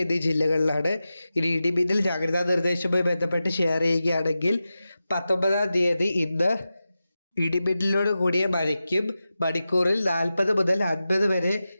എന്നീ ജില്ലകളിലാണ്. ഇനി ഇടിമിന്നൽ ജാഗ്രതാ നിർദ്ദേശവുമായി ബന്ധപ്പെട്ട് ഷെയർ ചെയ്യുകയാണെങ്കിൽ 19-ാം തീയതി ഇന്ന് ഇടിമിന്നലോട് കൂടിയ മഴയ്ക്കും മണിക്കൂറിൽ 40 മുതൽ 50 വരെ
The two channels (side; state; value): both; inverted; correlation -0.93